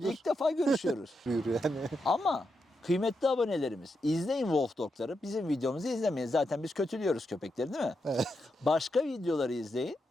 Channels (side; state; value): both; normal; correlation 0.84